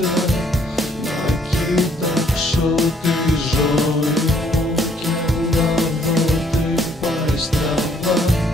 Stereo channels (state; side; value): normal; both; correlation 0.65